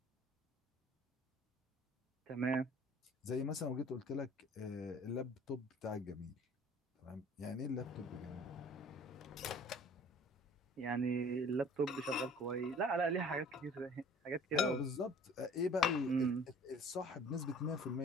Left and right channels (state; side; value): normal; both; correlation 0.50